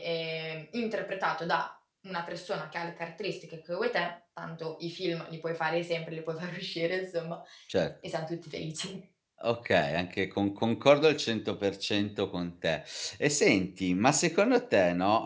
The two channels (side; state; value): both; identical; correlation 1.00